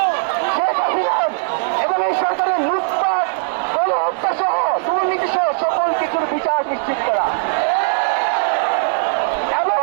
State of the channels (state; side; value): silent; left; digital silence